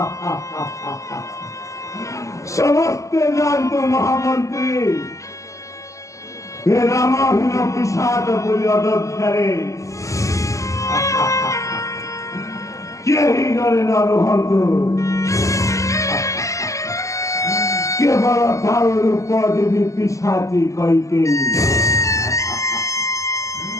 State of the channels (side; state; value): right; late; 0.16 ms